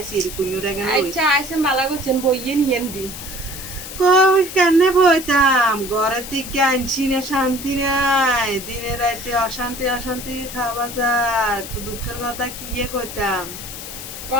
কুഞ്ഞুরে গেল আচ্ছা আইসে মালা করছেন বইয়ে নিয়েন দি। কই কেনে বইতাম ঘরের দিকে আনছি না শান্তি নাই দিনে রাতে অশান্তি অশান্তি খাওয়া যার দুঃখের কথা কি কইতাম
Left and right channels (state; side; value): noise; left; hiss, 10 dB below the sound